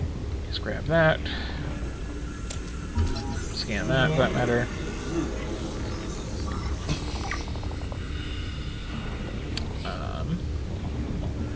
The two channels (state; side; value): identical; both; correlation 1.00